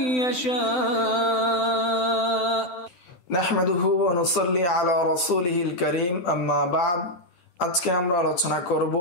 يشاء نحمده ونصلي على رسوله الكريم أما بعد আজকে আমরা আলোচনা করব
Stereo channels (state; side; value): late; right; 12 ms